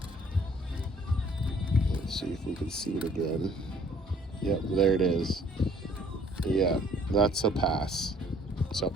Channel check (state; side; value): normal; both; correlation 0.59